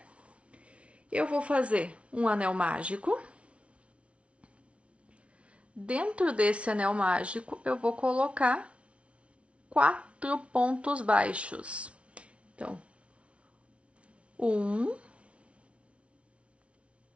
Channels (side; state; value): left; late; 0.061 ms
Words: Eu vou fazer um anel mágico. Dentro desse anel mágico, eu vou colocar 4 pontos baixos. Então, 1,